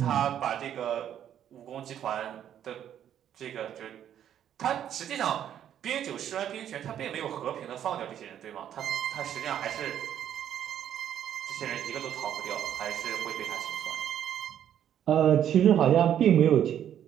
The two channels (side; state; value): left; quieter; 10.2 dB